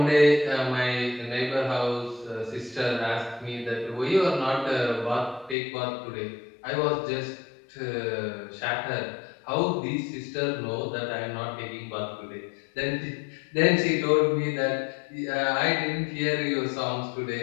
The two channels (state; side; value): drops out; right; at 5.6 s